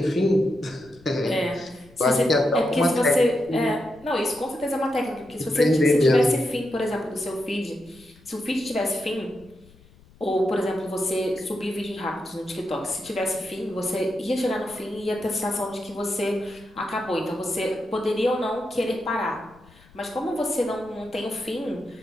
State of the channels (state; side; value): noise; left; rumble, 26 dB below the sound